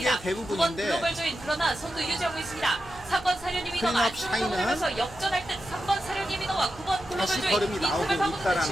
9번 대부분인데 글로벌 조이 그러나 선두 유지하고 있습니다. 3번 사련이 위너가 클린업 안쪽으로 샤인은 돌면서 역전할 듯 3번 사련이 위너와 9번 글로벌 다시 조이 걸음이 이 나오고 틈을 파고드는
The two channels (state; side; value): noise; right; hum, 20 dB below the sound